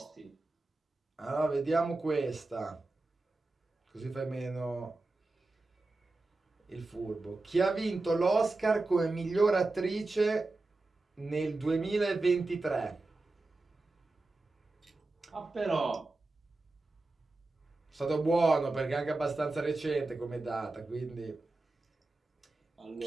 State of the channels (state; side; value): quieter; left; 3.2 dB